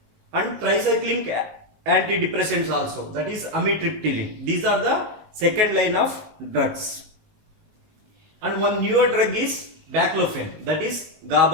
and tricyclic antidepressants also, that is amitriptyline. These are the second line of drugs. And one newer drug is baclofen, that is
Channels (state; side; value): late; left; 19 ms